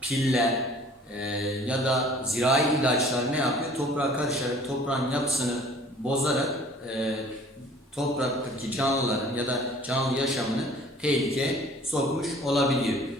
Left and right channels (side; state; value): both; normal; correlation 0.51